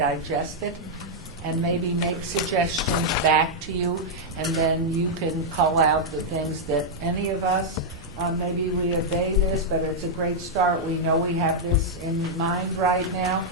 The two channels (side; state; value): both; normal; correlation -0.05